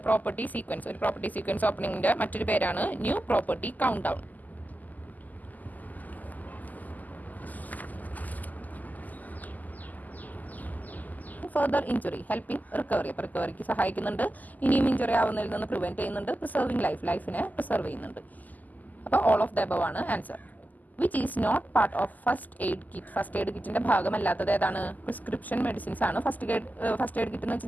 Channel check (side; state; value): right; late; 0.081 ms